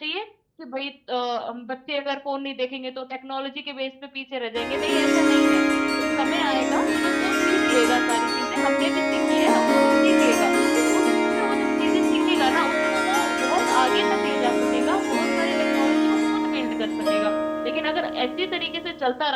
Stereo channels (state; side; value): identical; both; correlation 1.00